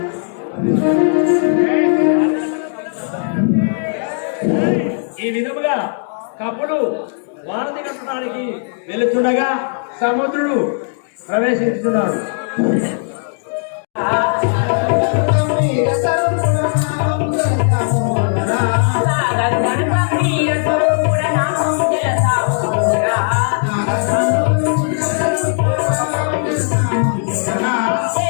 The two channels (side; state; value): right; silent; 64 dB below the other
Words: ఈ విధముగా కపులు వారధి కట్టడానికి వెళుతుండగా సముద్రుడు ప్రవేశిస్తున్నాడు.